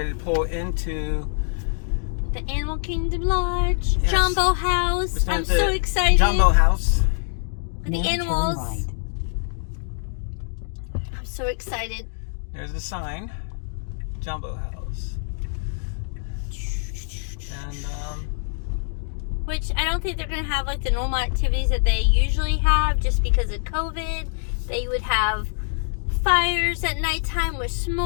to pull into The Animal Kingdom Lodge, Yes. Jumbo We're House. staying I'm at the so excited. Jumbo House. The Then turn animals. right. I'm so excited. There's the sign, Jumbo House. And Which I don't think they're going to have like the normal activities that they usually have just because of COVID. They would have fires at nighttime with In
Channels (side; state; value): right; silent; digital silence